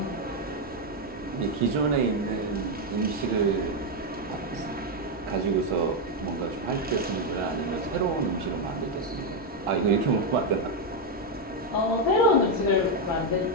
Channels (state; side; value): normal; both; correlation 0.03